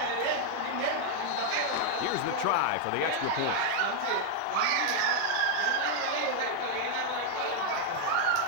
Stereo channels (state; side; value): different; both; correlation 0.00